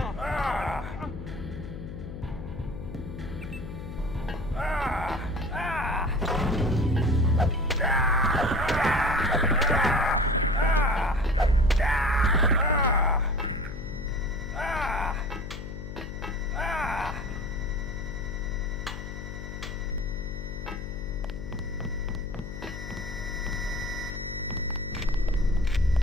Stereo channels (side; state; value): left; noise; hum, 9 dB below the sound